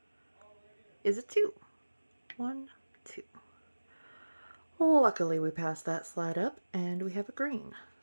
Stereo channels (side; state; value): both; inverted; correlation -1.00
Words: is a 2. 1, 2. Luckily we passed that slide up and we have a green.